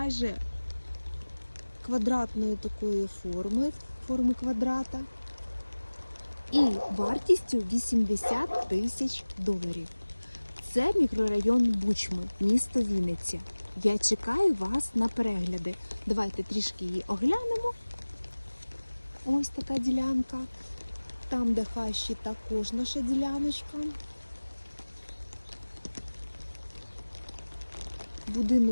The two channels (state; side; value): inverted; both; correlation -1.00